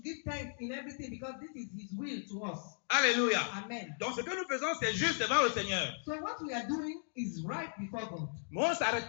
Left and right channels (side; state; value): right; silent; digital silence